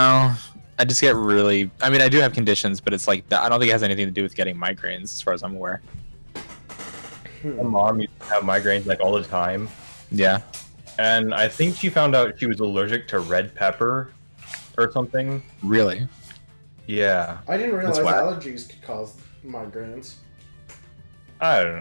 I just get really... I mean, I do have conditions, but it's like... I don't think it has anything to do with getting migraines, as far as I'm aware. My mom used to have migraines like all the time. Yeah. And I think she found out she was allergic to red pepper or something. Really? Yeah. I didn't realize That's why- allergies could cause migraines. I don't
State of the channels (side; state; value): both; inverted; correlation -1.00